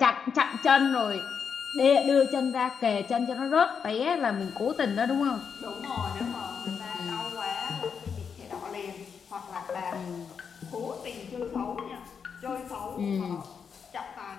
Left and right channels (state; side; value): quieter; right; 6.5 dB